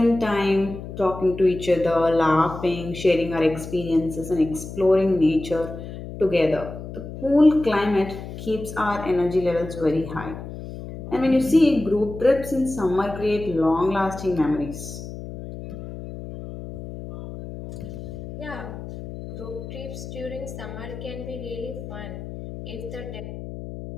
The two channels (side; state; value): left; noise; hum, 10 dB below the sound